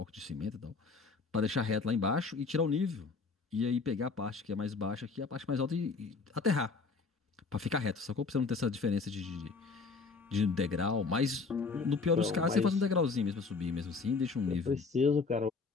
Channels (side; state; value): right; quieter; 4.4 dB